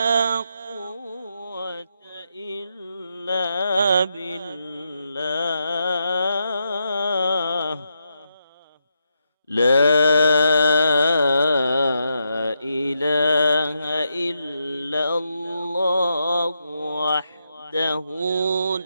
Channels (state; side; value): inverted; both; correlation -0.83